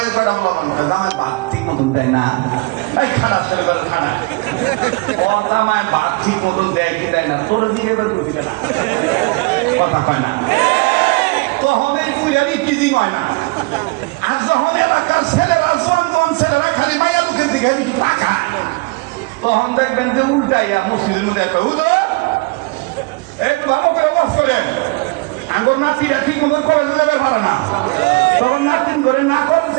কটা বলা আমার ভাত ঠিক মতন দেয় না এই খারাপ খানা ওর জামাই ভাত ঠিক মতন দেয় কি দেয় না তোর দিকে এবার দিবে না কথা কয় না তখন এই পুরানি টিজিং হয় না আর যখন এলাকার ছেলেরা জোয়ান ছেলেরা খালি মায়া লোকের দিকে একটু টাকা তখন দেখবেন যে উল্টাইয়া মসজিদের মধ্যে একটা একটু ভালো করে ওয়াজ করেন আগর নাতিরা ঠিক মতন করে দেবে পারে না তখন নাতিন করে না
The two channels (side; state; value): left; quieter; 26.9 dB